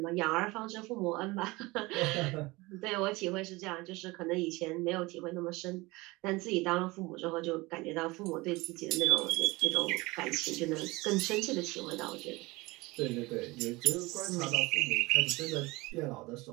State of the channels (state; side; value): quieter; left; 22.6 dB